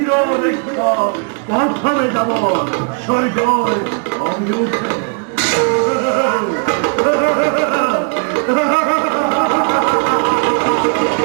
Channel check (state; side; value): quieter; left; 37.7 dB